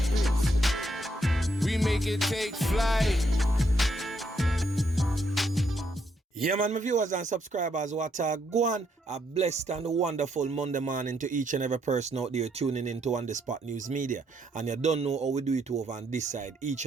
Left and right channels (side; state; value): both; normal; correlation 0.75